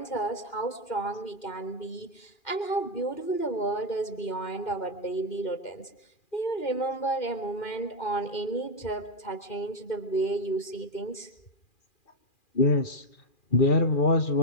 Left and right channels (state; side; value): late; right; 2.4 ms